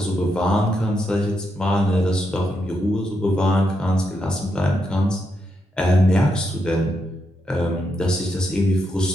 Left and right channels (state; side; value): normal; both; correlation 0.82